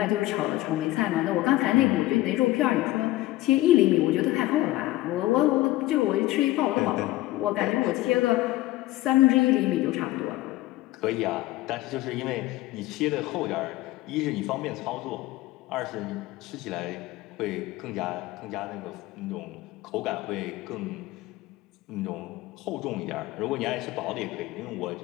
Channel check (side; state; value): right; quieter; 17.2 dB